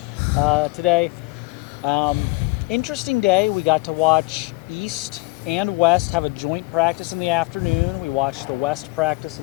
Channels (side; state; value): right; quieter; 24.3 dB